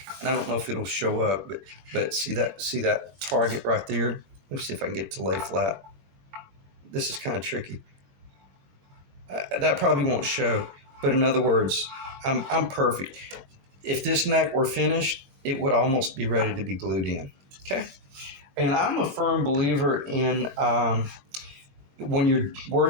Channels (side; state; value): left; late; 21 ms